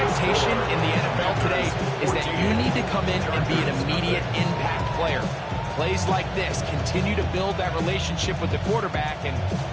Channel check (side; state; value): both; identical; correlation 1.00